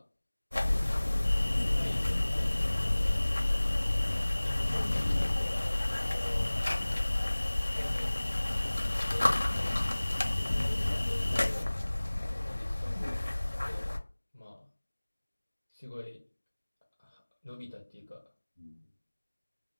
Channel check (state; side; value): inverted; both; correlation -1.00